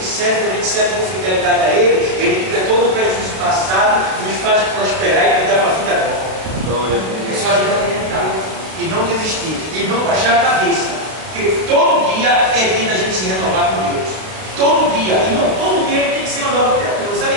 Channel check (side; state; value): left; late; 32 ms